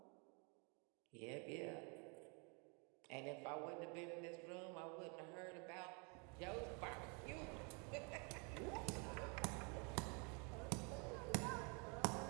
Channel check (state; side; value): quieter; left; 34.5 dB